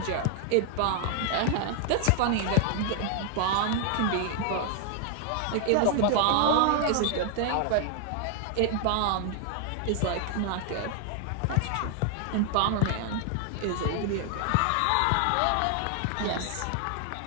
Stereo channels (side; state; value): both; different; correlation 0.00